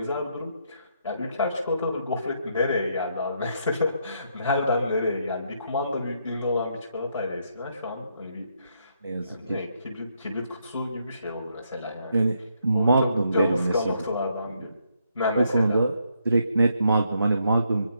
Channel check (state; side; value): inverted; both; correlation -0.76